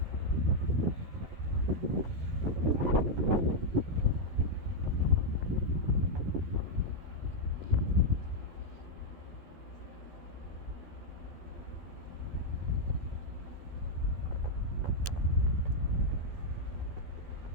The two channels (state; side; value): late; left; 12 ms